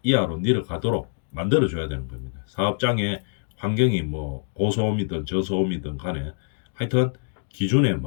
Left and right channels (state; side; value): silent; right; digital silence